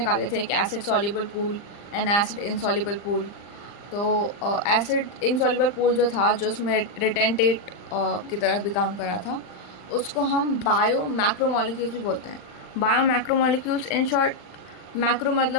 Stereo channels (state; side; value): late; right; 39 ms